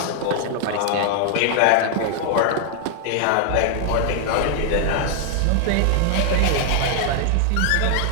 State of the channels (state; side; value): different; both; correlation 0.00